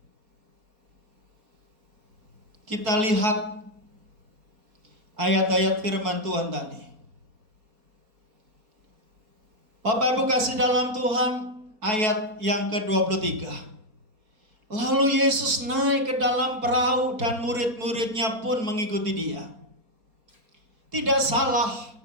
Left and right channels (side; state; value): left; late; 4.2 ms